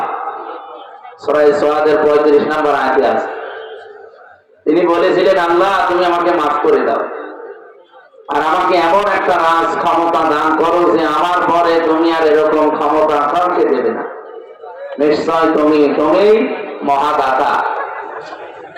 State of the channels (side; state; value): both; identical; correlation 1.00